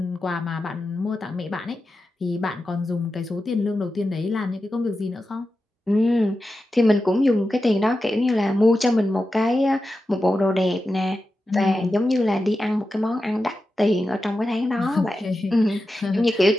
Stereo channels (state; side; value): normal; both; correlation 0.91